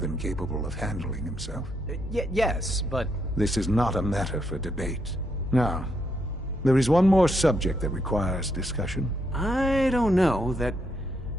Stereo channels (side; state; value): both; normal; correlation 0.77